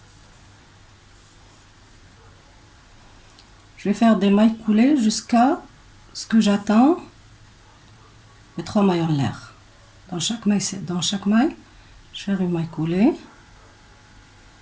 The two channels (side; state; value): both; identical; correlation 1.00